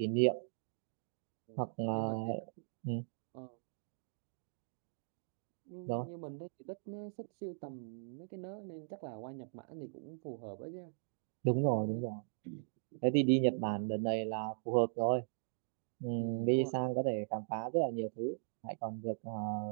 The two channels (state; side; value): silent; left; digital silence